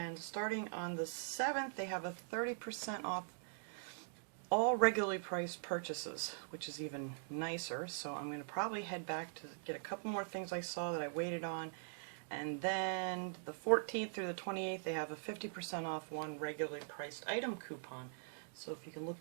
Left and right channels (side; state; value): left; silent; digital silence